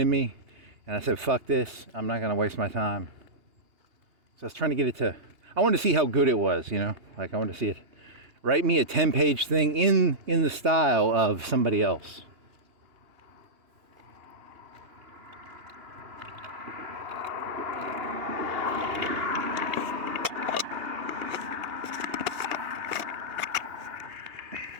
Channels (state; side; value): late; left; 2.8 ms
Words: me. And I said, fuck this, I'm not going to waste my time. So I was trying to get it to, I wanted to see how good it was, like I wanted to see it. Write me a 10-page thing in the style of somebody else.